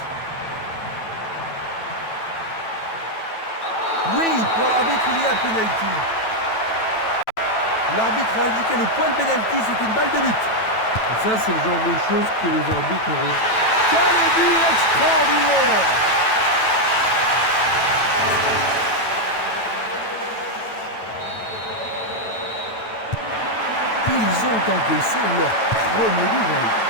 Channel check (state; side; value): late; right; 9.1 ms